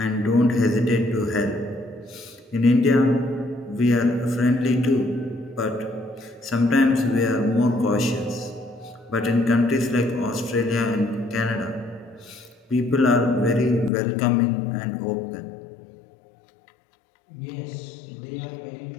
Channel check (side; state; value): right; drops out; at 13.9 s